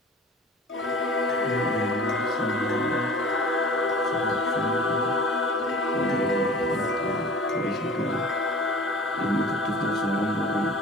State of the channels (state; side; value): normal; both; correlation 0.43